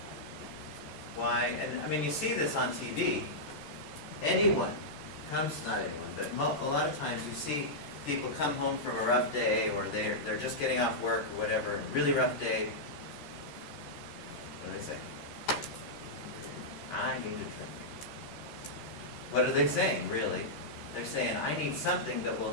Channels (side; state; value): right; late; 14 ms